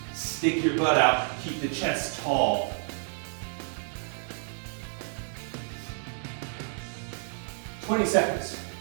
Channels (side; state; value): left; silent; 58 dB below the other